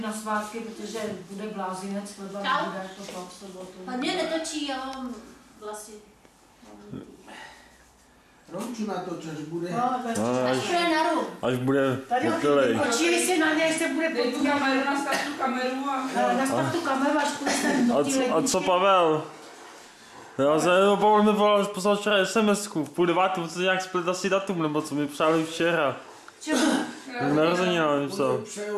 na svátky, protože bude blázinec, chleba nebude to v sobotu. A mě netočí, já mám vlasy. Romču natoč, až bude. Až bude na rum. Až bude hotelej. Počíli si na něj, se bude podívat. Nastav tu kameru a... Nastav tu kameru, až půjde ten do té ledničky. A co Pavel? Já jsem Pavel mi poslal včera SMS-ku, v 8:30, co nějak split asi datum, nebo co mi přáli včera. Čemu? Narozenina mi psal.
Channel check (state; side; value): identical; both; correlation 1.00